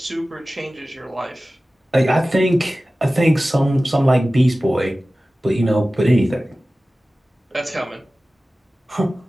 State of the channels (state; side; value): normal; both; correlation 0.96